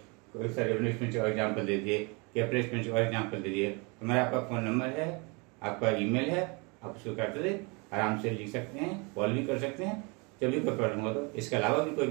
कोई सा रेवेन्यू एक्सपेंडिचर और एग्जाम्पल दे दिए, कैपिटल एक्सपेंडिचर और एग्जाम्पल दे दिए, तो मेरा आपका फोन नंबर है, आपका ईमेल है, आप उसको करते आराम से लिख सकते हैं, कॉल भी कर सकते हैं जब भी कोई प्रॉब्लम हो। तो इसके अलावा भी कोई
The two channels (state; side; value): quieter; left; 30.3 dB